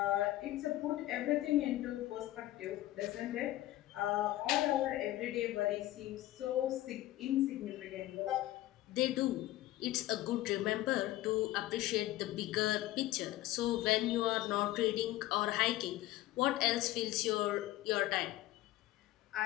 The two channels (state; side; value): quieter; right; 15.9 dB